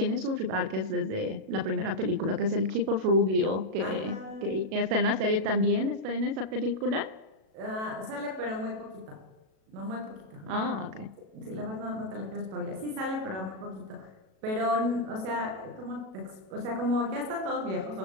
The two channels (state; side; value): late; left; 37 ms